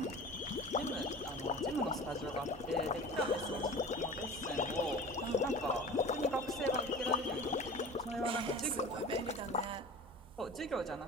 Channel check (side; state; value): both; normal; correlation 0.36